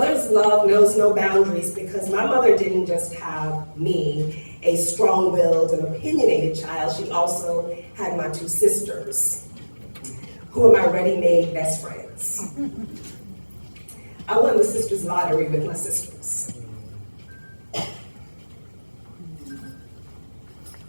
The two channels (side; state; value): both; inverted; correlation -1.00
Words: love knows no boundaries because my mother didn't just have me, a strong-willed and opinionated child. She also had my two sisters, who are my ready-made best friends. I won the sisters lottery with my sisters.